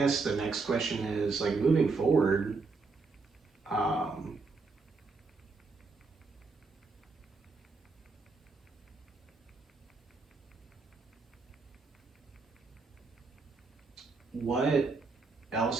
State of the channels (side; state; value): left; quieter; 4.1 dB